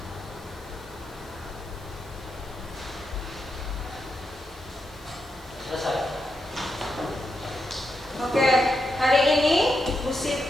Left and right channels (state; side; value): noise; left; hiss, 24 dB below the sound